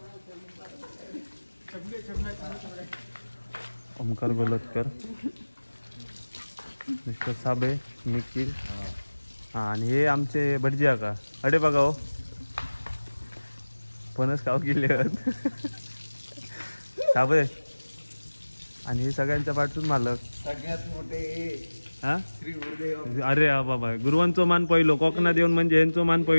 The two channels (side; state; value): both; inverted; correlation -1.00